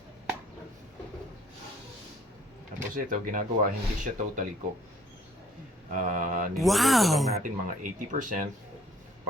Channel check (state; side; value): normal; both; correlation 0.59